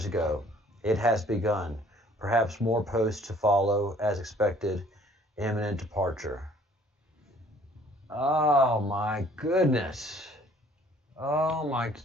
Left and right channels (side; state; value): both; normal; correlation 0.57